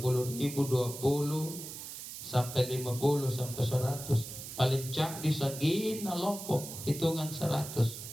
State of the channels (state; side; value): noise; right; hiss, 10 dB below the sound